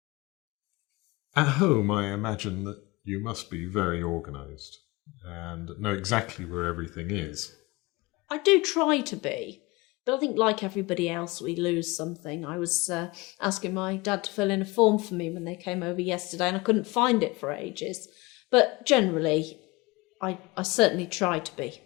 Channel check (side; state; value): right; quieter; 23.0 dB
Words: At home, I imagine that you must be very organised and know exactly where everything is. I do try to be, but I think like everybody else, we lose something. I was asking my dad to fill in a form for me when they came over yesterday, and I couldn't find it for ages. But generally, I certainly try to be,